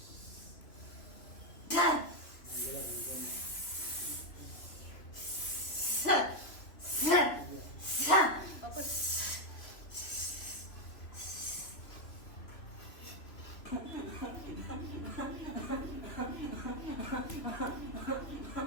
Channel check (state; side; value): late; right; 3.1 ms